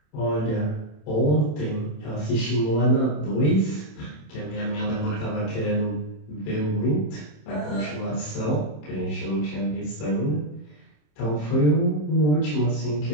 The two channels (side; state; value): right; late; 27 ms